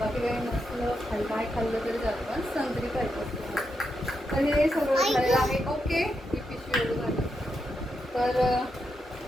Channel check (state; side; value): normal; both; correlation 0.84